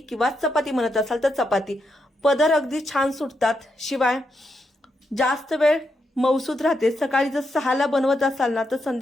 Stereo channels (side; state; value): both; normal; correlation 0.83